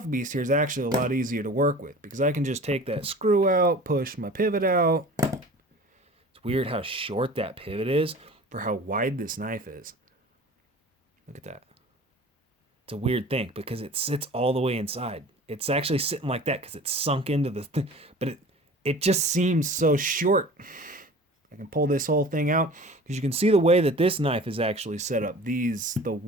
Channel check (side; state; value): both; normal; correlation 0.42